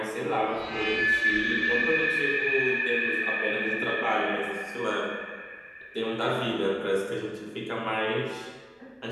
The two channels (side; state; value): both; identical; correlation 1.00